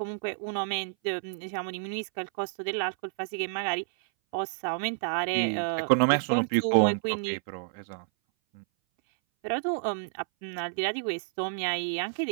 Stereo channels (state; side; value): silent; left; 58 dB below the other